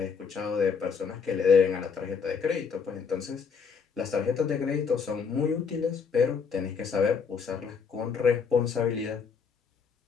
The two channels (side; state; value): right; quieter; 5.9 dB